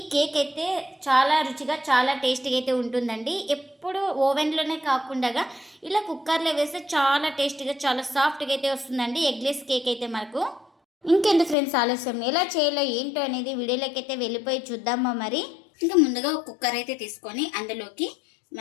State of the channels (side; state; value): right; drops out; at 11.6 s